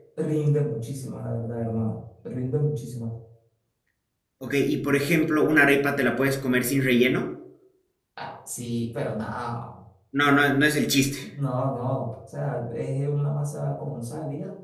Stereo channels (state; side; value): identical; both; correlation 1.00